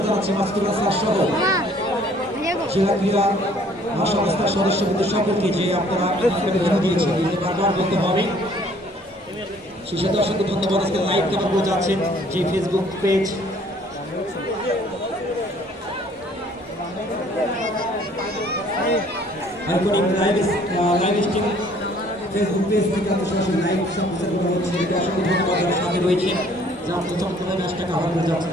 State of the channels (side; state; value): both; normal; correlation 0.58